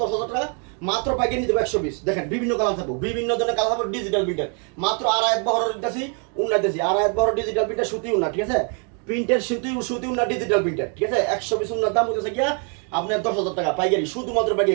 10,000 টাকা, মাত্র পাইকারি নিতে 120। দেখেন বিভিন্ন কালার থাকবো, বিভিন্ন ধরনের কালার থাকবো, ডিজিটাল প্রিন্টার মাত্র আড়াইত বহরের দিতেছি, উন্না দিতেছি, আড়াইত বহরের ডিজিটাল প্রিন্টার সুতি উন্না, ঠিক আছে? প্রিন্টের সুতি উন্না ডিজিটাল প্রিন্টার, ঠিক আছে? 120 উন্নার দাম হচ্ছে গিয়া আপনার 10,000 টাকা পাইকারি, শুধুমাত্র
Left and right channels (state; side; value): quieter; left; 39.8 dB